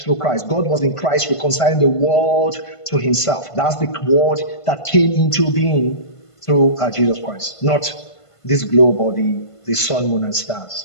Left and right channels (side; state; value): right; late; 1.5 ms